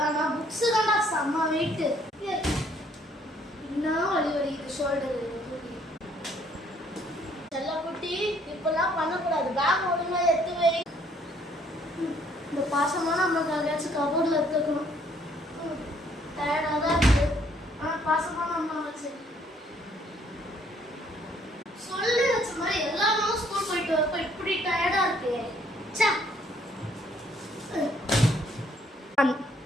ஆனா புக்ஸ் தான்டா செம்ம வெயிட்டு. என்ன வலி வலிக்குது ஷோல்டர். செல்ல குட்டி இப்பெல்லாம் பண்ணக்கூடாது, பேக் ஒழுங்கா எடுத்து வை. இந்த பாசமான அம்மாக்கு அங்கேயாச்சும் கபோர்டில் எடுத்துக்கணும். டயர்டாக தான் இருக்கு, ஆனால் பாசமான அம்மா வச்சு சொல்லி வச்ச மாதிரி எல்லா நாளும் ஸ்கூல் போயிட்டு வரப்ப இப்படி டயர்டா இருக்கு.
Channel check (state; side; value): normal; both; correlation 0.65